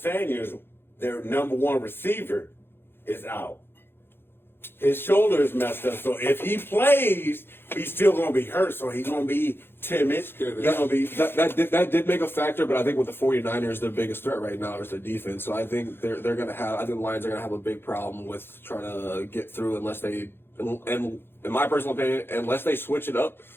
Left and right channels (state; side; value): late; right; 0.11 ms